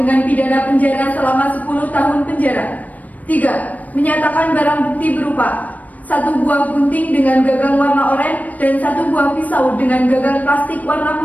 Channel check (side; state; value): right; late; 0.074 ms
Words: pidana penjara selama 10 tahun penjara. 3. Menyatakan barang bukti berupa 1 buah gunting dengan gagang warna oranye dan 1 buah pisau dengan gagang plastik warna